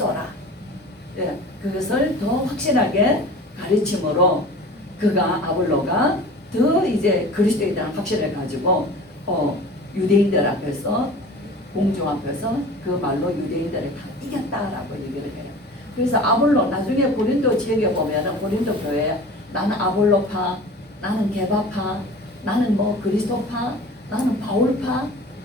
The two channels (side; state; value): both; normal; correlation 0.40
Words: 예, 그것을 더 확실하게 가르침으로 그가 아볼로가 더 이제 그리스도에 대한 확신을 가지고 유대인들 앞에서 공중 앞에서 그 말로 유대인들을 다 이겼다라고 얘기를 해요. 그래서 아볼로 나중에 고린도 지역에 보면은 고린도 교회 나는 아볼로파, 나는 게바파, 나는 뭐 그리스도파, 나는 바울파.